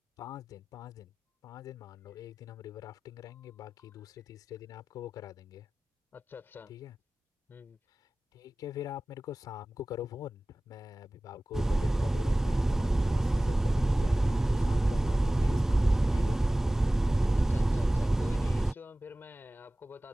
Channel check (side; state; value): both; normal; correlation 0.98